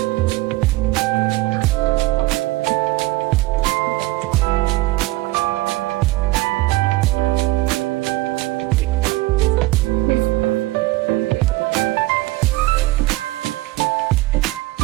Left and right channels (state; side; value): quieter; left; 19.1 dB